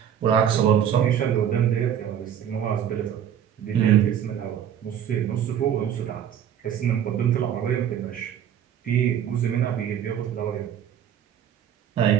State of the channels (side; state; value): left; quieter; 9.4 dB